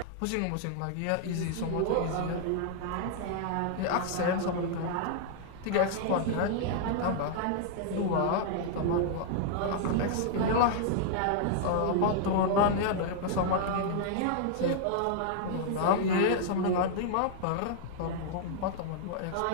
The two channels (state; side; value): different; both; correlation -0.01